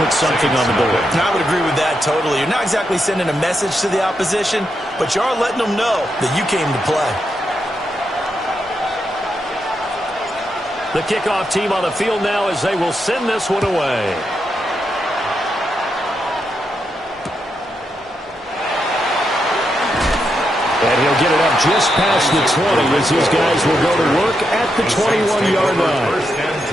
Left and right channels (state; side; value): normal; both; correlation 0.83